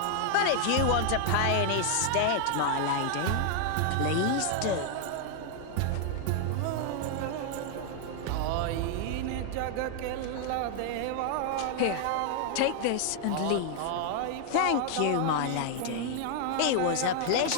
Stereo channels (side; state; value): both; different; correlation 0.00